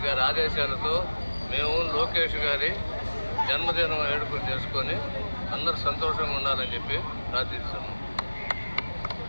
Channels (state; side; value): inverted; both; correlation -1.00